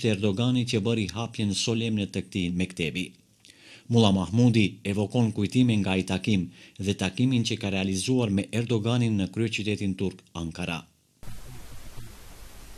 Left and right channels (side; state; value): both; identical; correlation 1.00